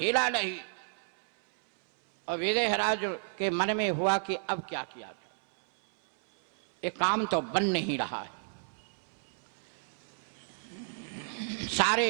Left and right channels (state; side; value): silent; left; 57 dB below the other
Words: हिला नहीं। और विदेहराज के मन में हुआ कि अब क्या किया, ये काम तो बन नहीं रहा।